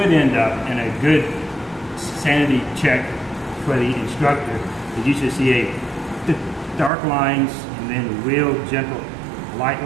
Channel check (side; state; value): left; drops out; at 6.9 s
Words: end up in a good sanity check for the instructor is you should see a dark lines and then real gentle light